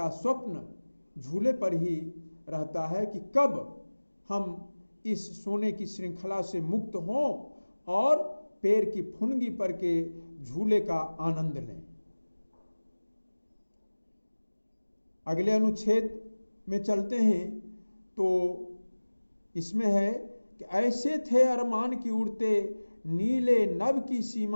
स्वप्न झूले पर ही रहता है कि कब हम इस सोने की श्रृंखला से मुक्त हों और पैर की फुनगी पर के झूले का आनंद लें। अगले अनुच्छेद में चलते हैं तो इसमें है कि ऐसे थे अरमान की उड़ते नीले नभ की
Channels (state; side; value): inverted; both; correlation -1.00